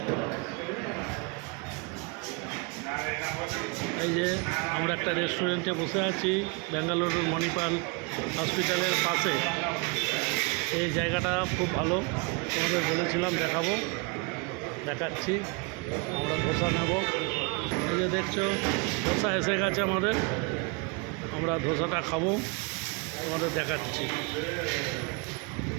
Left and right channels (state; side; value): quieter; left; 30.8 dB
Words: এই যে আমরা একটা রেস্টুরেন্টে বসে আছি বেঙ্গালুরুর মণিপাল হসপিটালের পাশে। এই জায়গাটা খুব ভালো, তোমাদের বলেছিলাম দেখাবো, দেখাচ্ছি। আমরা ধোসা নেব। এই যে দেখছো ধোসা এসে গেছে আমাদের, আমরা ধোসাটা খাবো, তোমাদের দেখাচ্ছি।